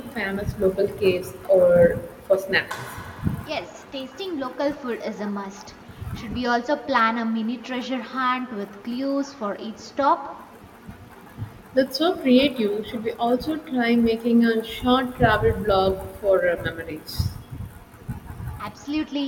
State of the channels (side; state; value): both; identical; correlation 1.00